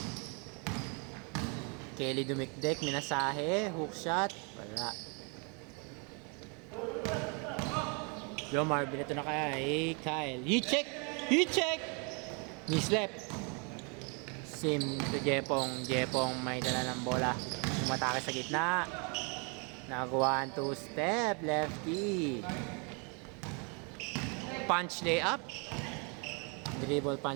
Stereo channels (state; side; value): quieter; left; 34.9 dB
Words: Kelly dumikdik, minasahe, hook shot, wala. Jomar, binato na kaya, Kyle. He check! Mislep. Sim to Jepong. Jepong may dala ng bola. Umatake sa gitna. Nagawa 2 step, lefty. Punch layup. Dribble